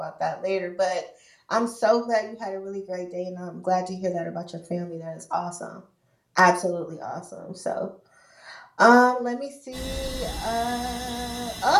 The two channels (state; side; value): identical; both; correlation 1.00